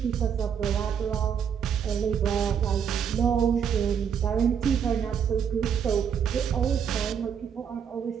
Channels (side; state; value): left; quieter; 7.7 dB